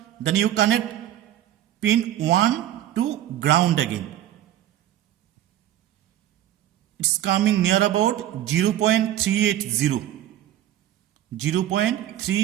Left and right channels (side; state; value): left; quieter; 12.4 dB